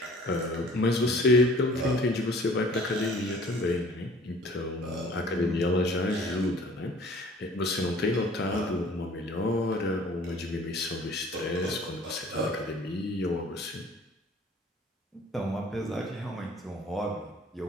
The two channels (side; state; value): both; normal; correlation 0.51